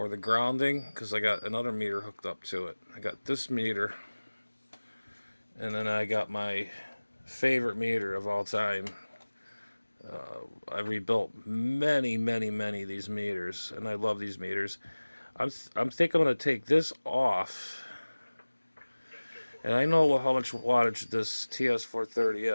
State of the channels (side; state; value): both; inverted; correlation -1.00